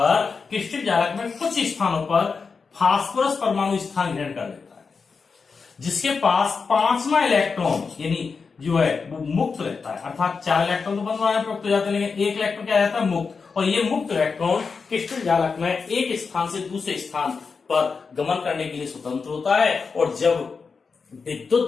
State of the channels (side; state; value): right; quieter; 5.1 dB